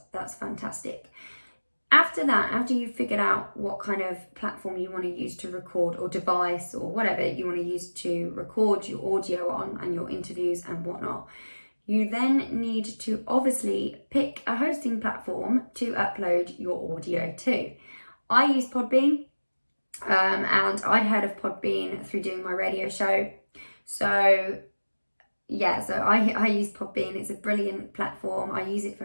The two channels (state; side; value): inverted; both; correlation -1.00